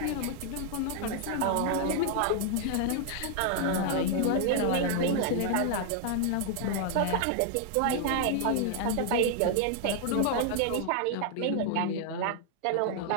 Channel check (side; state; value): both; different; correlation 0.00